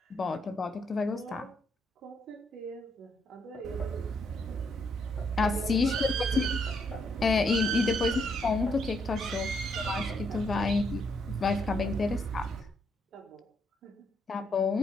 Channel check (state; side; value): normal; both; correlation 0.75